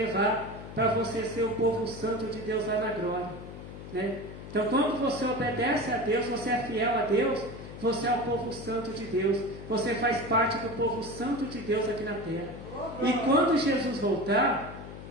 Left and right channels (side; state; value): left; noise; hum, 12 dB below the sound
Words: para você ser o povo santo de Deus lá na glória, né? Então, quando você obedece a Deus, você é fiel a Deus, você é o povo santo de Deus, você faz parte do povo santo de Deus aqui na terra. E quando Jesus voltar,